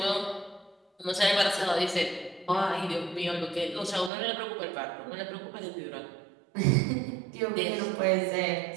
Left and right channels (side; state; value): left; drops out; at 4.1 s